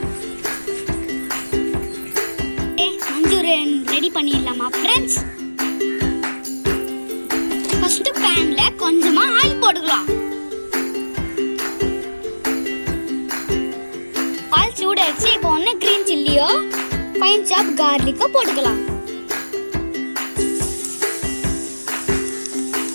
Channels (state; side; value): inverted; both; correlation -1.00